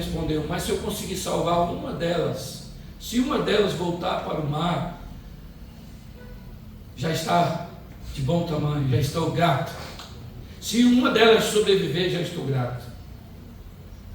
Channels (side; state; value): both; identical; correlation 1.00